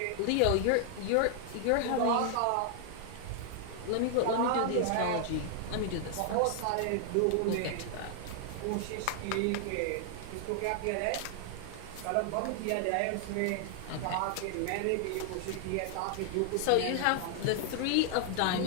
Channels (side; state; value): both; different; correlation 0.00